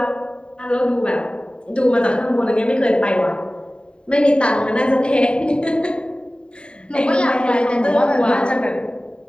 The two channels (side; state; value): right; late; 0.052 ms